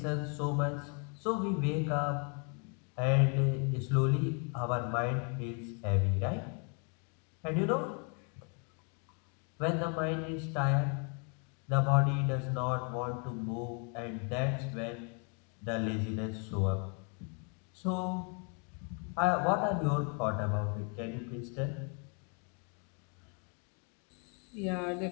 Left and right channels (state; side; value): quieter; right; 38.3 dB